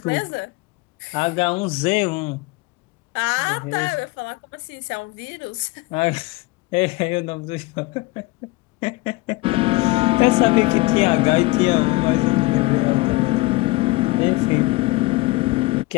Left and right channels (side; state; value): right; quieter; 22.3 dB